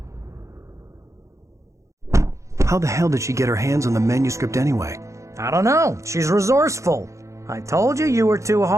How the hell did she get her hands on the manuscript anyway? I don't know. She's resourceful. I told you you were too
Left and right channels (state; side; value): late; left; 0.15 ms